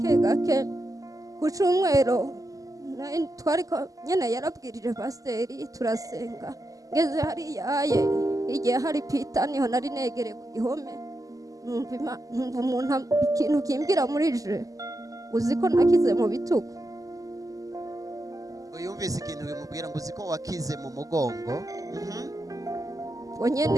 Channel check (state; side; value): late; left; 0.17 ms